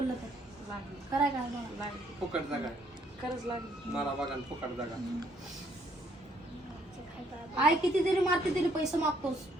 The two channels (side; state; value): both; normal; correlation 0.67